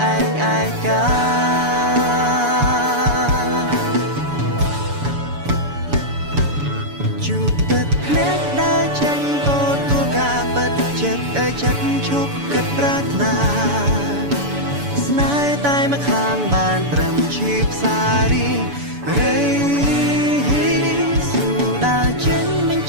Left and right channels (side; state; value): left; late; 7.0 ms